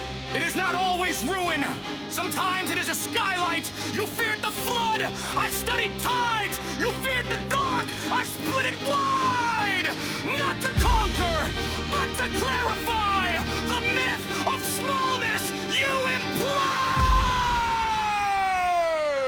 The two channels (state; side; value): identical; both; correlation 1.00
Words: it is not always ruin. Sometimes it is a skylight. You feared the flood. I studied tides. You feared the dark. I split it wide. Not to conquer, but to clarify the myth of smallness you imply.